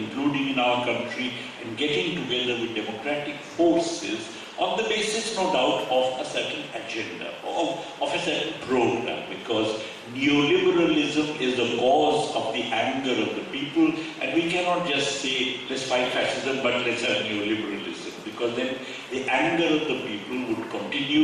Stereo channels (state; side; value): identical; both; correlation 1.00